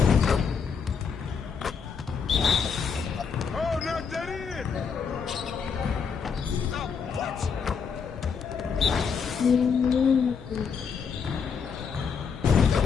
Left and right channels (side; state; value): right; quieter; 6.2 dB